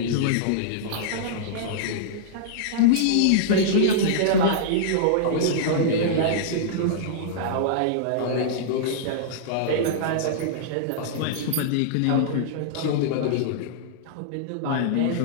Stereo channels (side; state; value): both; different; correlation -0.02